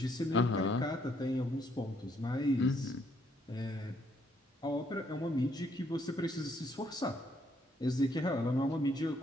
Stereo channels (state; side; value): normal; both; correlation 0.70